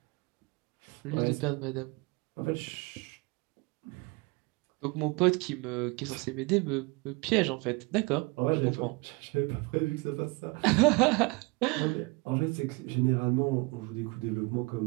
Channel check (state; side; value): quieter; left; 26.8 dB